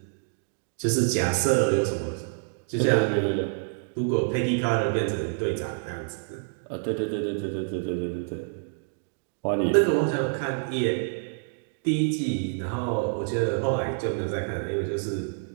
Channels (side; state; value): left; silent; digital silence